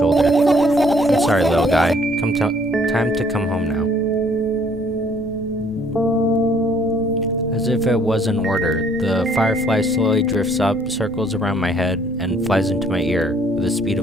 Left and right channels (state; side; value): noise; left; rumble, 19 dB below the sound